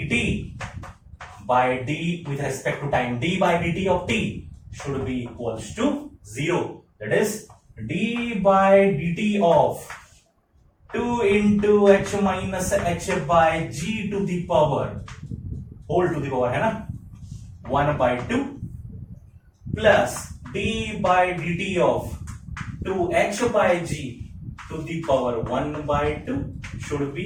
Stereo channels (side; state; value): both; identical; correlation 1.00